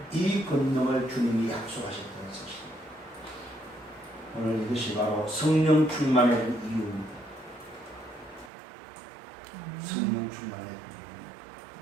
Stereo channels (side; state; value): left; drops out; at 8.5 s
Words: 이 권능을 주님이 약속하셨다는 사실입니다. 오늘 이것이 바로 성령 충만의 이유입니다. 성령 충만의 이유입니다.